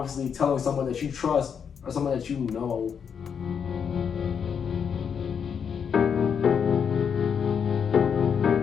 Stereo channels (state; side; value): quieter; right; 7.1 dB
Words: telling someone that you trust or someone that you know